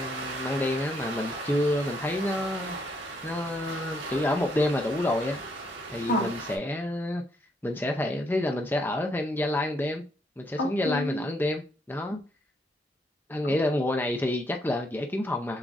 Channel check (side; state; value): both; normal; correlation 0.73